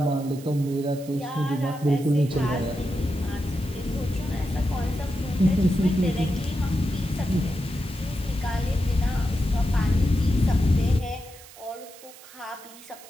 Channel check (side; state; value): right; noise; hiss, 19 dB below the sound